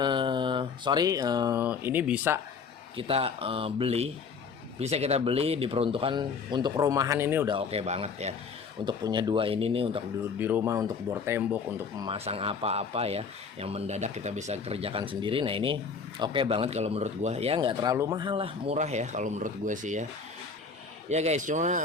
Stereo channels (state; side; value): quieter; right; 5.3 dB